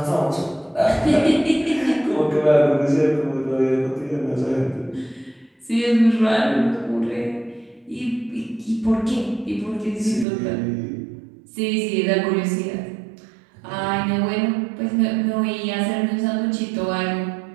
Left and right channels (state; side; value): drops out; left; at 10.2 s